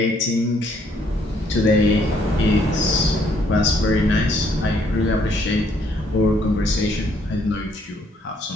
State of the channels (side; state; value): both; normal; correlation 0.67